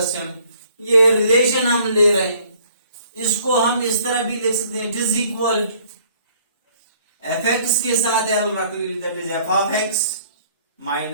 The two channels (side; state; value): both; inverted; correlation -0.59